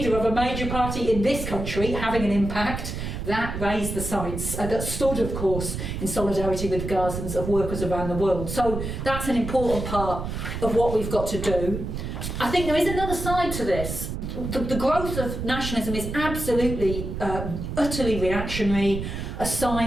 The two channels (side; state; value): right; noise; rumble, 5 dB below the sound